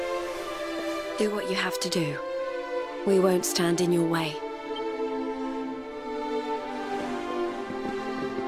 Do what you have to do. We won't stand in your way.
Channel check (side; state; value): both; identical; correlation 1.00